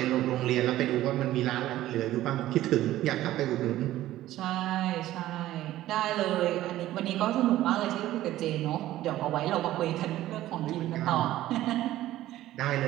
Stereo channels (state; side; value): quieter; left; 14.6 dB